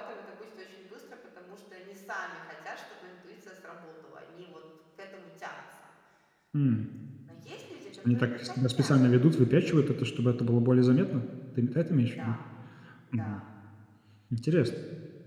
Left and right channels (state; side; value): identical; both; correlation 1.00